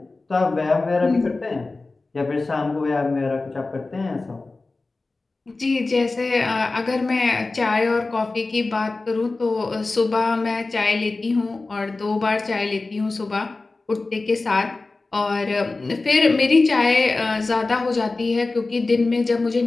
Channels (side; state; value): right; quieter; 3.5 dB